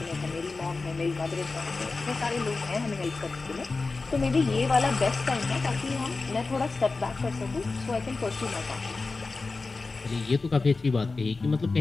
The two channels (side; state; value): right; quieter; 3.8 dB